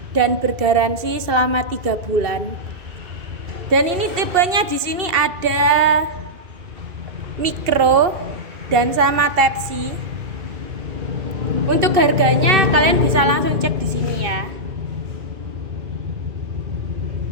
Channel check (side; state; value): left; late; 2.7 ms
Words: dan bergaransi selama 3 bulan. Dan ini tipenya di sini ada micro dan sama Type C. Untuk harganya kalian bisa langsung cek di sini ya.